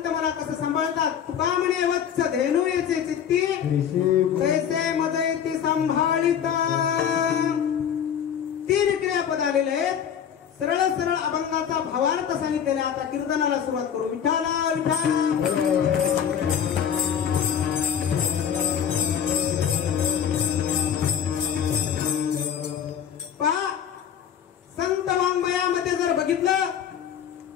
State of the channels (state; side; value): quieter; right; 8.5 dB